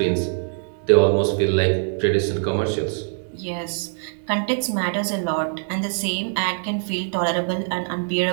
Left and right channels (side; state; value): left; silent; digital silence